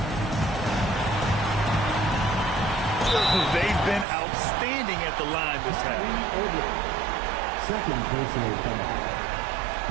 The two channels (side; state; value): left; drops out; at 4.0 s